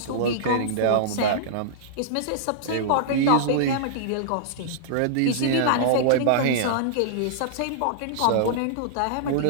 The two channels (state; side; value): different; both; correlation -0.02